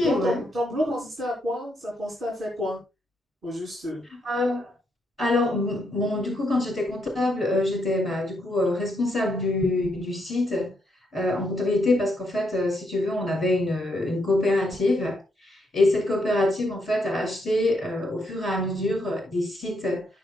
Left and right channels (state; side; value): normal; both; correlation 0.77